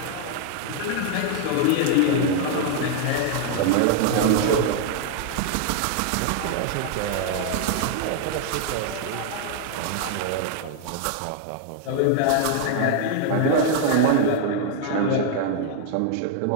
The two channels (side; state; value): both; different; correlation 0.00